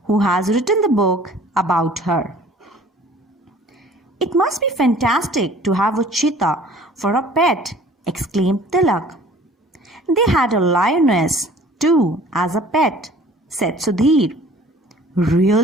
who has written the book about her. It must be fantastic to have a cheetah for a pet, exclaimed Tilak. They had a lioness too as a pet, said Sudhir.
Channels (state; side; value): normal; both; correlation 0.50